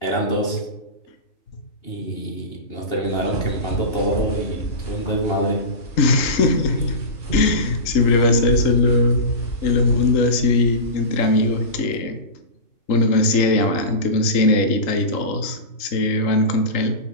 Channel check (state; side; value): late; right; 3.7 ms